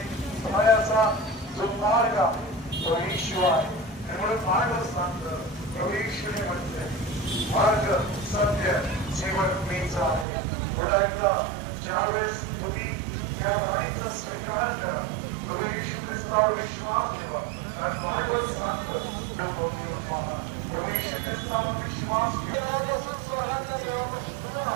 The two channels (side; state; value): left; drops out; at 10.2 s